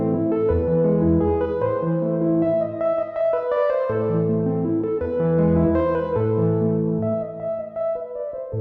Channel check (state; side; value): identical; both; correlation 1.00